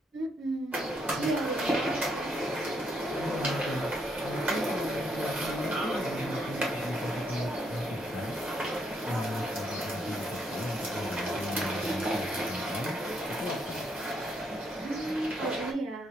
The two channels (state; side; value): normal; both; correlation 0.75